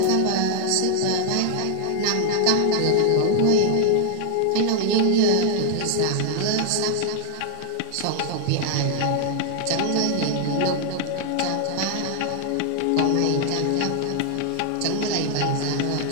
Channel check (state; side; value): different; both; correlation 0.00